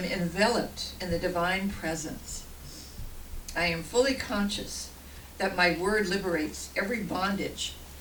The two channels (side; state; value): both; identical; correlation 1.00